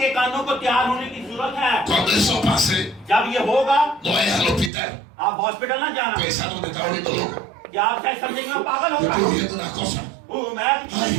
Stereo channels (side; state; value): left; drops out; at 4.7 s